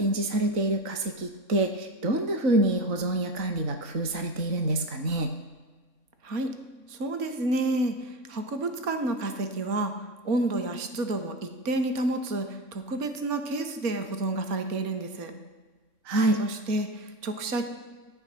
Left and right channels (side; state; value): left; late; 3.6 ms